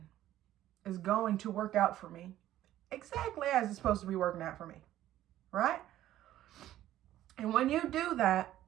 is going to work out for me exactly as it's supposed to be working out for me. right? And when you do that,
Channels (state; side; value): quieter; left; 13.3 dB